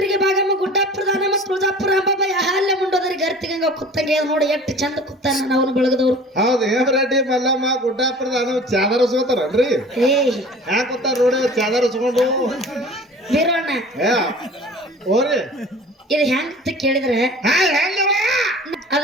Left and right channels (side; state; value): both; normal; correlation 0.43